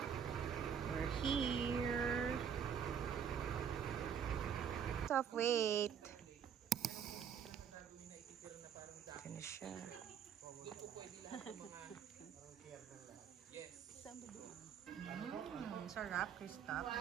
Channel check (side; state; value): left; quieter; 7.8 dB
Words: We're here. Stop, wait. Ito na siya. Sarap, Christoph.